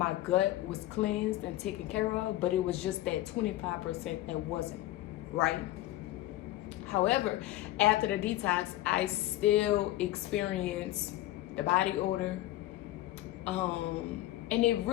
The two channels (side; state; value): right; quieter; 15.6 dB